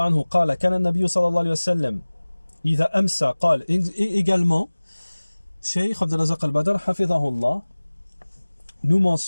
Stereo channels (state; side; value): inverted; both; correlation -1.00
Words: عنه قال كان النبي صلى الله عليه وسلم إذا أمسى قال. Également, Cheikh Abd al-Razak al-Badr hafidhahullah nous